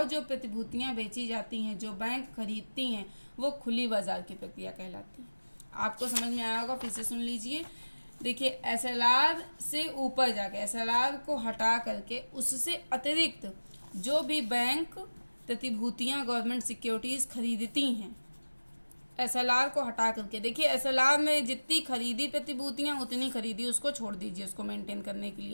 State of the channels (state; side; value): inverted; both; correlation -1.00